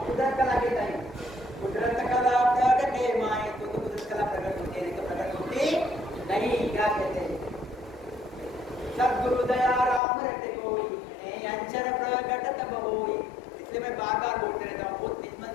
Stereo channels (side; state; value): right; drops out; at 10.0 s